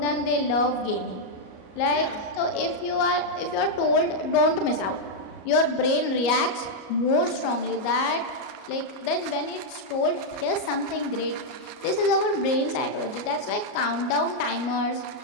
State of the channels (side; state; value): right; late; 38 ms